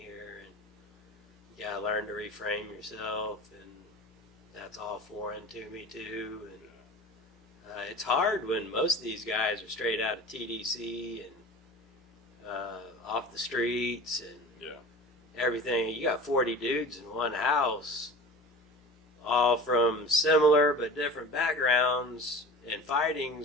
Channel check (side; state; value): both; normal; correlation 0.37